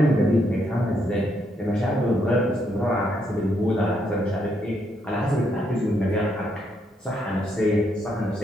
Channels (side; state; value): both; normal; correlation 0.76